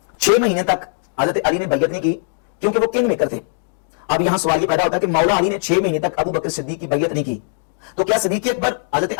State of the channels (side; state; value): right; silent; digital silence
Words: 6 महीने तक हजरत अली ने बैयत नहीं की क्योंकि वो किंग मेकर थे। अब यहां सवाल ये पैदा होता है कि मौला अली ने 6 महीने तक अबू बकर सिद्दीक की बैयत नहीं की, तो क्या सिद्दीक अकबर हजरत